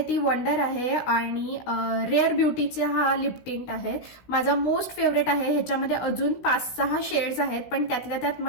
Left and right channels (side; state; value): right; late; 16 ms